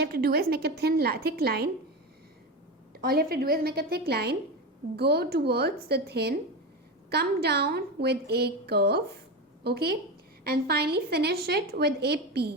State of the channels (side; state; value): both; normal; correlation 0.20